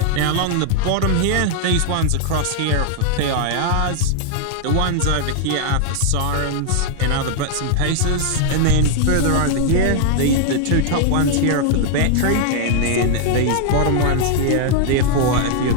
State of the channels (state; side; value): different; both; correlation 0.00